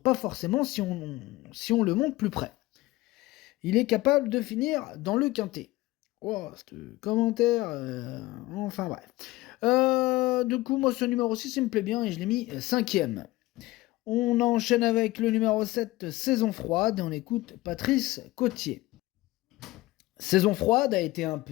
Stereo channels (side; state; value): right; quieter; 18.8 dB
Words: forcément si on le monte plus près. Il est capable de finir dans le quintet. Oh, ce commentaire, enfin bref. Du coup, moi, ce numéro 6, il me plaît bien et je l'ai mis 5ème. On enchaîne avec le numéro 7, Saison froide, et on écoute Patrice Cotier. Saison froide a été un